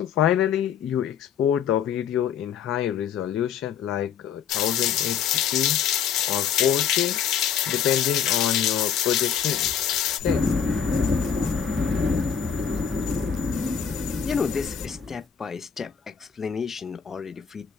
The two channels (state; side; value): quieter; right; 7.9 dB